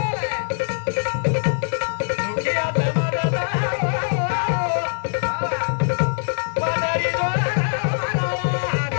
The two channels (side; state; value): right; silent; digital silence